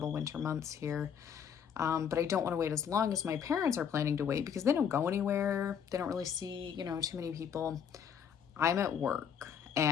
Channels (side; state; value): right; quieter; 7.8 dB